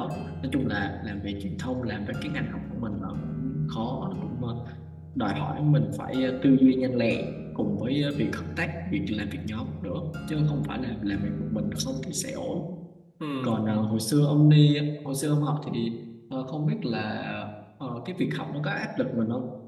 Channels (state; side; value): identical; both; correlation 1.00